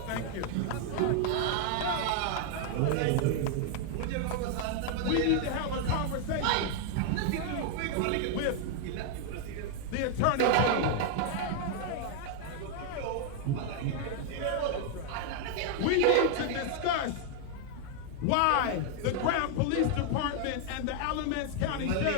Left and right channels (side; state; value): both; different; correlation 0.00